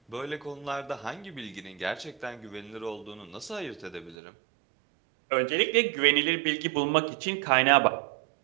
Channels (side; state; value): left; drops out; at 4.2 s